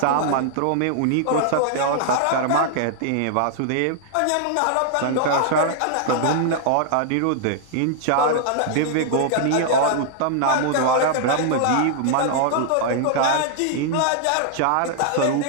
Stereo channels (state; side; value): different; both; correlation -0.01